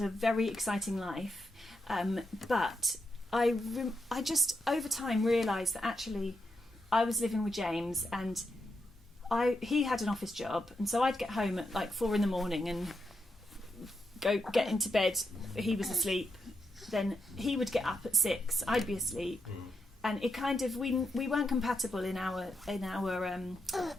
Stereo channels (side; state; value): both; normal; correlation 0.84